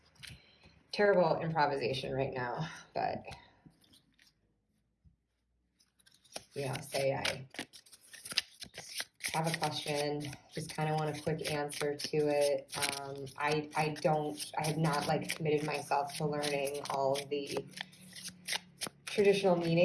terrible improvisation right now, but say I have a question, just kind of want a quick answer to it. I have not like committed myself to learning all of the traditional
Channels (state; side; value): identical; both; correlation 1.00